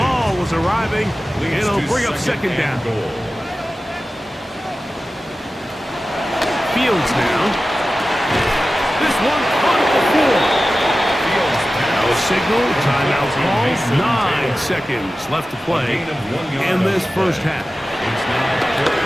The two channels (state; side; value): normal; both; correlation 0.95